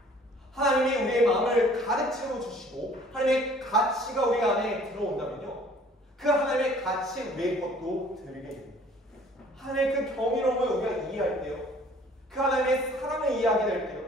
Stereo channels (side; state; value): both; normal; correlation 0.54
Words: 하나님이 우리의 마음을 가득 채워주시고 하나님의 가치가 우리 안에 들어온다면요, 그 하나님의 가치 우리의 것도 드리게 됩니다. 하나님의 그 경이로움을 우리가 이해할 때요, 그 하나님의 사랑을 이해하게 될 때요,